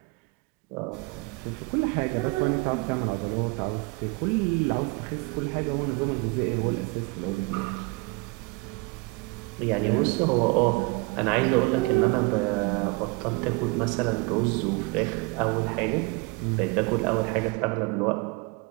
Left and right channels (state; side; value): quieter; left; 27.9 dB